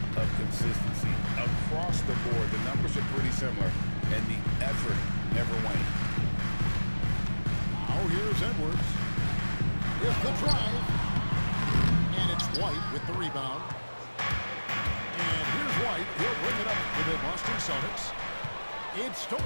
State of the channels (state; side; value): inverted; both; correlation -1.00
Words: of consistency. Across the board, the numbers are pretty similar, and the effort never wanes. Now here's Edwards. Here's the drive. And it's White with the rebound. And here's White. He'll bring it up for the Boston Celtics. It's